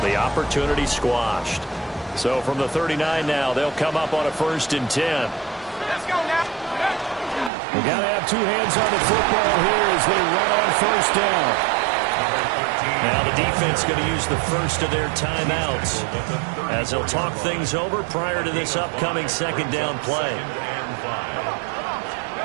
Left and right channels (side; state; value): left; drops out; at 7.5 s